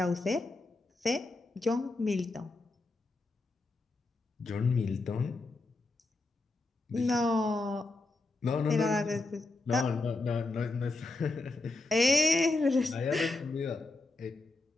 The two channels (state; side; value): quieter; right; 3.2 dB